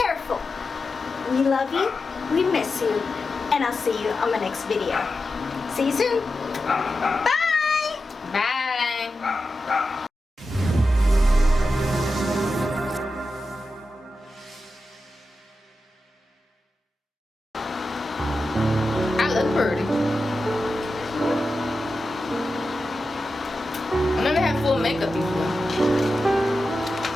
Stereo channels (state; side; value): normal; both; correlation 0.91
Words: We love you, we miss you, and I'll see you on my next video. See you soon. Bye! Bye. I look pretty. I never had full makeup before.